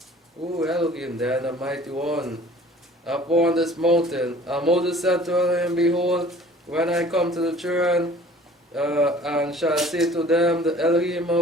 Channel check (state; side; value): normal; both; correlation 0.49